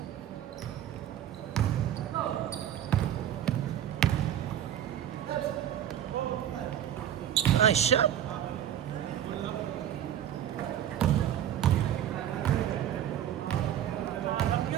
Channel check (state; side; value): quieter; left; 10.6 dB